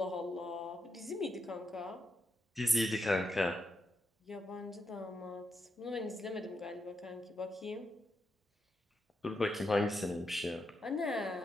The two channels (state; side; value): normal; both; correlation 0.84